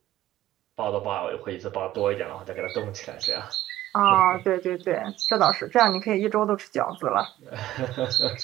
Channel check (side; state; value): left; quieter; 14.3 dB